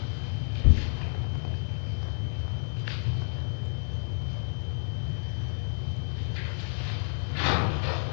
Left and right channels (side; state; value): right; silent; 58 dB below the other